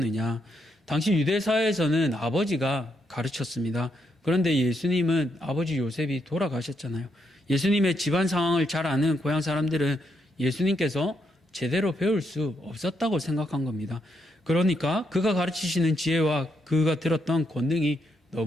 당시 유대사회에서는 아버지가 가르쳤습니다. 그런데 예수님은 아버지 요셉이 돌아가셨잖아요. 예수님의 집안 상황을 잘 아는 고향 사람들은 예수님께서 제대로 배울 수 없었다고 생각한 겁니다. 그러니까 그가 가르치시는 지혜와 그가 들었던 권능이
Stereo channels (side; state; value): both; normal; correlation 0.78